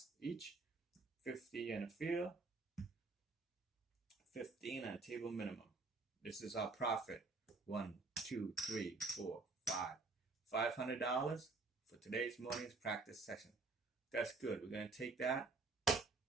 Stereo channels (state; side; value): quieter; left; 3.8 dB